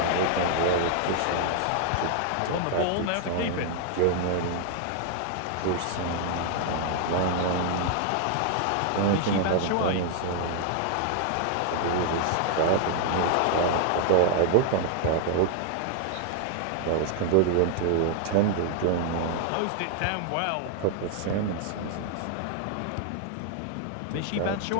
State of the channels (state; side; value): different; both; correlation 0.00